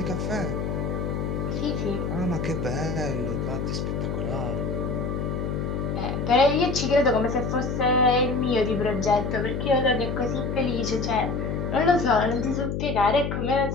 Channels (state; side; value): noise; left; hum, 2 dB below the sound